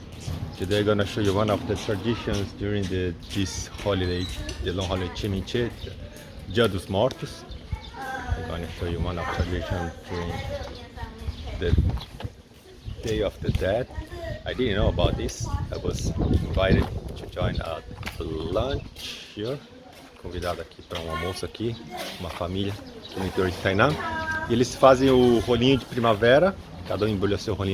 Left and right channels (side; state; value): both; identical; correlation 1.00